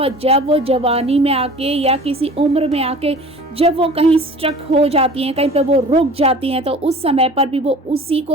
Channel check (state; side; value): normal; both; correlation 0.43